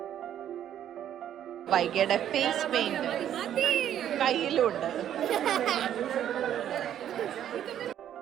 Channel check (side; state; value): left; quieter; 10.5 dB